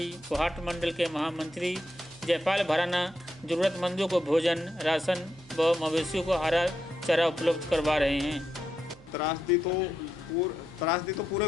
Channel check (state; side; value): noise; right; hum, 24 dB below the sound